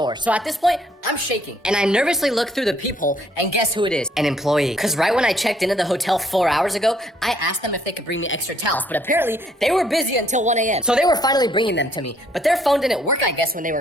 So at this point, I'm shaking. And I nervously look through the peephole, and guess who it is? An employee. Because right when I checked into the hotel 4 hours ago, I asked them if they could bring me extra towels, but apparently, they were busy until 1 a.m. So they were finally bringing them to me. But their phone didn't work, I guess, when they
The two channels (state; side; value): normal; both; correlation 0.66